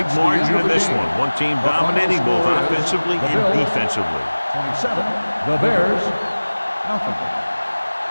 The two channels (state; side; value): inverted; both; correlation -1.00